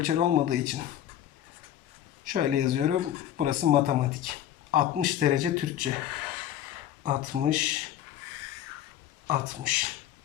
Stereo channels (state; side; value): quieter; right; 11.4 dB